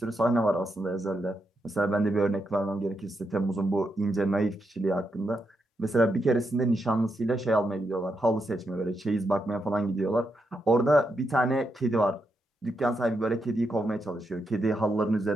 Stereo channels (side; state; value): both; normal; correlation 0.83